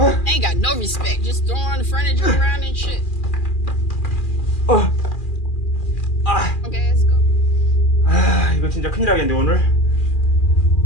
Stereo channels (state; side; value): late; right; 2.4 ms